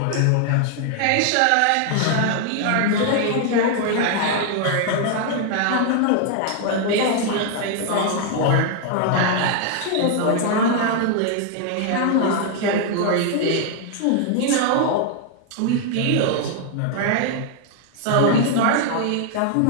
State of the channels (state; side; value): different; both; correlation 0.00